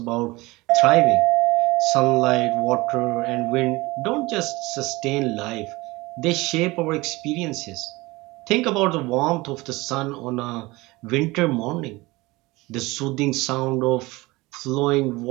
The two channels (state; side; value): quieter; left; 21.7 dB